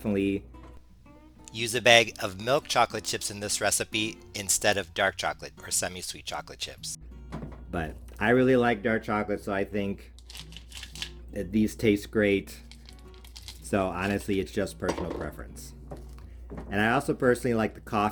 use a bag of milk chocolate chips in this recipe instead of dark chocolate or semi-sweet chocolate chips. But I really like dark chocolate, so I think that these taste great. So honestly, it's just personal preference. And I also personally like the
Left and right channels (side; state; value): both; identical; correlation 1.00